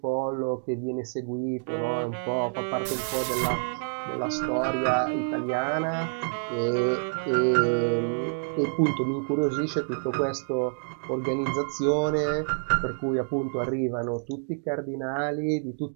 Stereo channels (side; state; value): left; silent; digital silence